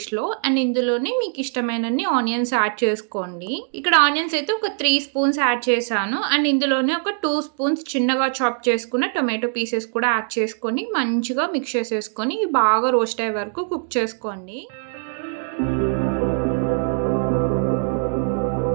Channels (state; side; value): silent; left; 64 dB below the other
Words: అండ్ ఇందులోనే మీకు ఇష్టమైనన్ని ఆనియన్స్ యాడ్ చేసుకోండి. ఇక్కడ ఆనియన్స్ అయితే ఒక 3 స్పూన్స్ యాడ్ చేశాను. అండ్ ఇందులోనే ఒక 2 స్పూన్స్ చిన్నగా చాప్ చేసుకున్న టొమాటో పీసెస్ కూడా యాడ్ చేసుకొని మంచిగా మిక్స్ చేసేసుకొని బాగా రోస్ట్ అయ్యే వరకు కుక్ చేసుకోండి.